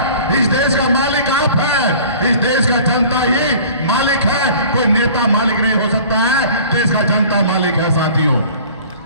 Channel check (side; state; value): both; inverted; correlation -0.46